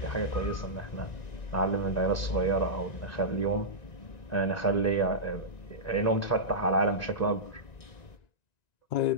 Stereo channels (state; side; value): late; right; 1.9 ms